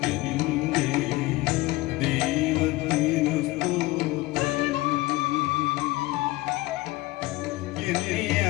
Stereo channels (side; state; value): right; quieter; 20.0 dB